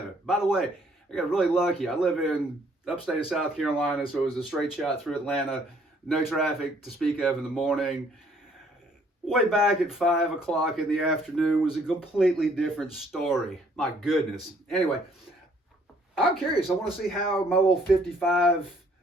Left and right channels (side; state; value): both; normal; correlation 0.63